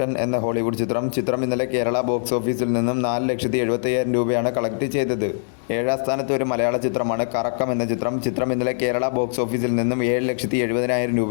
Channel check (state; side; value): silent; right; digital silence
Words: എന്ന ഹോളിവുഡ് ചിത്രം. ചിത്രം ഇന്നലെ കേരള ബോക്സ് ഓഫീസിൽ നിന്നും 4,70,000 രൂപയാണ് കളക്ട് ചെയ്തത്. 7ാം സ്ഥാനത്ത് ഒരു മലയാള ചിത്രമാണ് കറക്കം എന്ന ചിത്രം. ചിത്രം ഇന്നലെ കേരള ബോക്സ് ഓഫീസിൽ നിന്നും 7,70,000